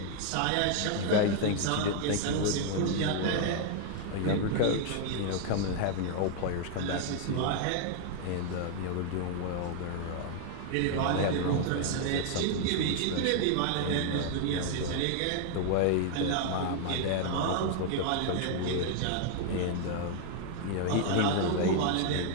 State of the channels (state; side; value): different; both; correlation 0.00